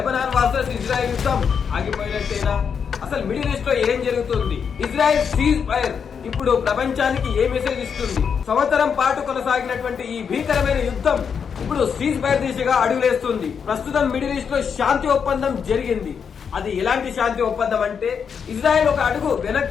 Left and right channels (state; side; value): quieter; right; 6.8 dB